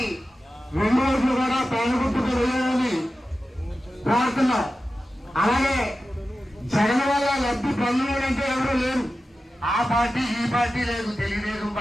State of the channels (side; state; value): both; normal; correlation 0.93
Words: 2 ఓట్లు కూడా పేదగుట్టుకు వేయాలని కోరుతున్నాం. అలాగే జగన్ వల్ల లబ్ధి పొందడంటే ఎవరు లేరు. ఆ పార్టీ ఈ పార్టీ లేదు, తెలుగుదేశం